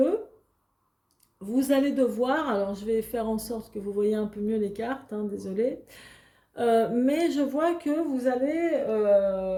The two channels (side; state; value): both; identical; correlation 1.00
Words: vous allez devoir, alors je vais faire en sorte que vous voyez un peu mieux les cartes, hein, désolé, mais je vois que vous avez